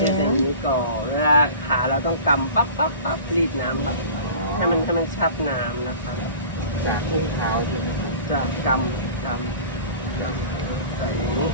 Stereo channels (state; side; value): inverted; both; correlation -0.40